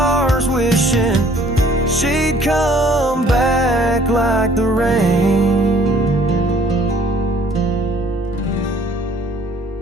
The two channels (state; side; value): normal; both; correlation 0.57